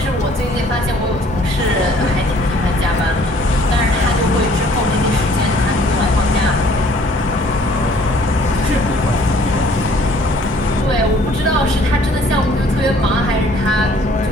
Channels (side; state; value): both; normal; correlation 0.57